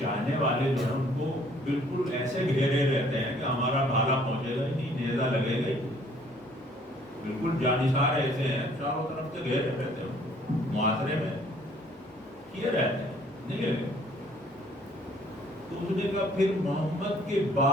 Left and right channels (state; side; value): normal; both; correlation 0.59